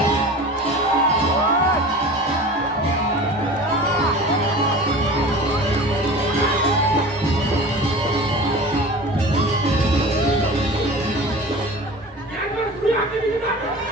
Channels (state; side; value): normal; both; correlation 0.37